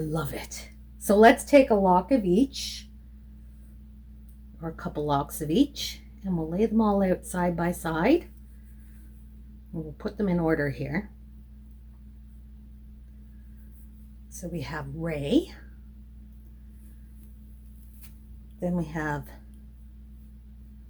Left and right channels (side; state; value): both; identical; correlation 1.00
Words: it. So let's take a lock of each, or a couple locks of each, and we'll lay them all out side by side. And we'll put them in order here. So we have Ray. Then we have